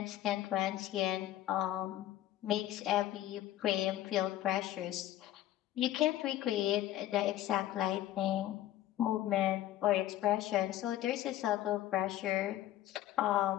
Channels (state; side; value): quieter; right; 13.6 dB